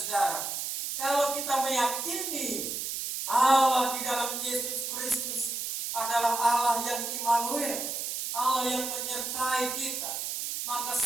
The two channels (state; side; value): noise; right; hiss, 3 dB below the sound